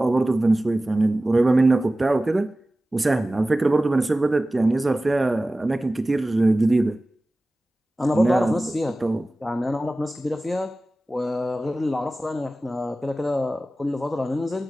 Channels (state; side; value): normal; both; correlation 0.96